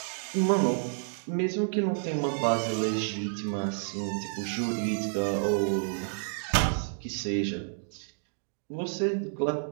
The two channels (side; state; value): left; silent; digital silence